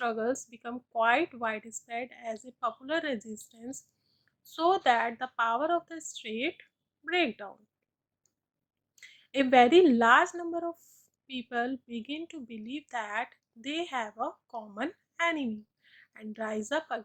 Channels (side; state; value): both; identical; correlation 1.00